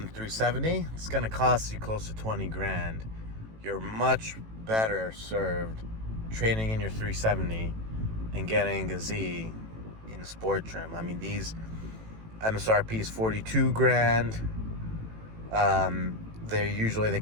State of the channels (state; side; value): late; left; 18 ms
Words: 370, it's going to cost you close to 20 grand. You're much better served trading in your 370 and getting a Z in sport trim. I mean, these MSRP is 42 grand. They